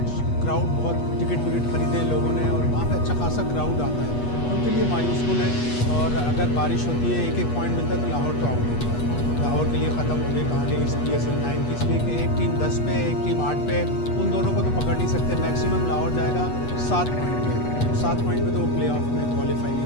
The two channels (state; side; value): late; right; 8.3 ms